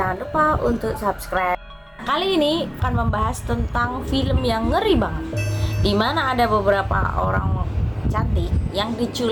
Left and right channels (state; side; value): identical; both; correlation 1.00